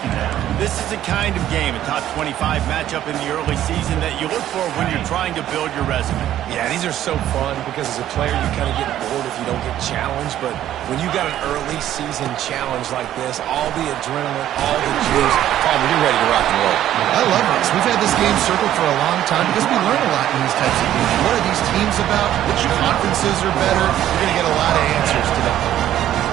This is the kind of game, a top 25 matchup in the early season that you look for when you're trying to build your resume. Yeah, these are so fun because as a player, you kind of get bored if you don't get challenged. But when you got an early season challenge like this, all the adrenaline, all the juice, you're ready to rock and roll. I love this. We've had this game circled for a long time because we learn a lot in these types of games. What are these teams about? Which conferences are better? You're going to get a lot of answers today.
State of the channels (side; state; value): left; quieter; 12.1 dB